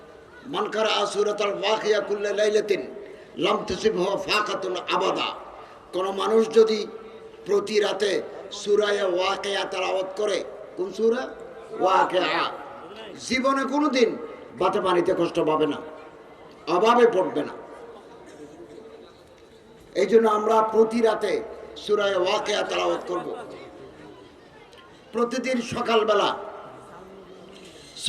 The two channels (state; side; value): identical; both; correlation 1.00